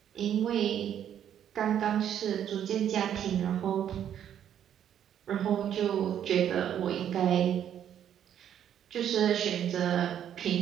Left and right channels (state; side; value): quieter; left; 9.8 dB